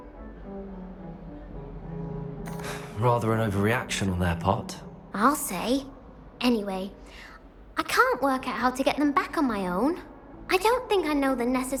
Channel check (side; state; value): both; identical; correlation 1.00